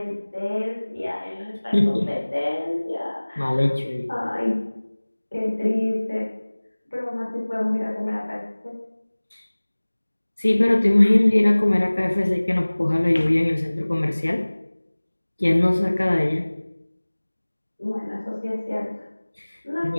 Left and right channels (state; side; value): inverted; both; correlation -1.00